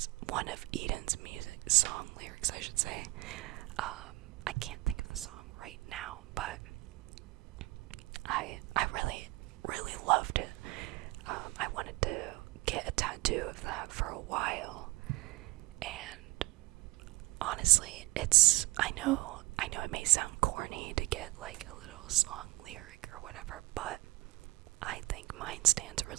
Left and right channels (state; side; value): quieter; left; 20.8 dB